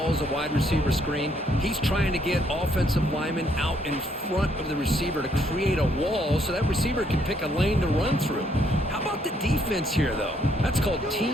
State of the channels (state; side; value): normal; both; correlation 0.70